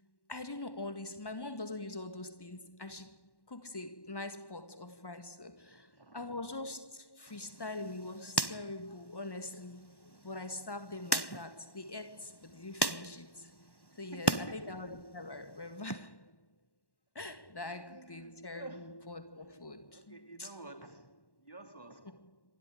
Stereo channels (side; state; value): right; late; 1.1 ms